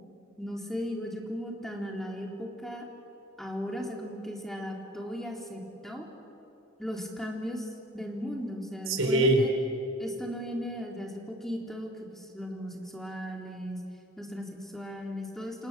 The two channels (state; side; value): normal; both; correlation 0.49